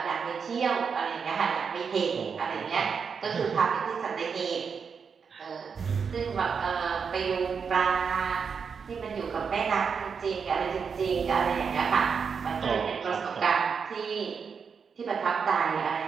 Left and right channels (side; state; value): left; quieter; 6.1 dB